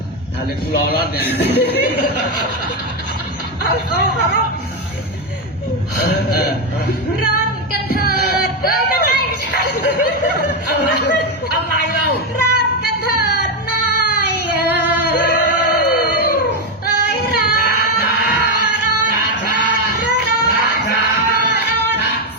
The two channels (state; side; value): normal; both; correlation 0.07